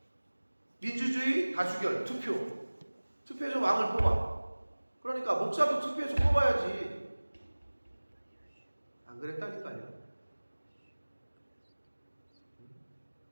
민주주의 다수결 투표해서 왕을 뽑아. 그러니까 목사도 투표해서 뽑아야지. 안 그랬다니까요.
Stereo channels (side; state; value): both; inverted; correlation -1.00